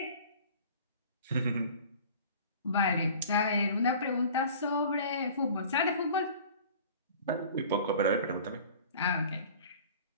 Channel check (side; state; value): both; inverted; correlation -0.44